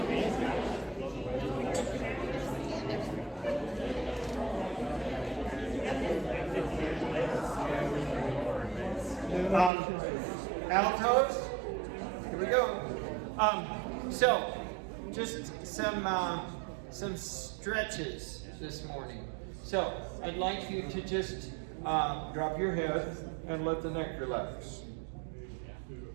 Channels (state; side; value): drops out; left; at 9.7 s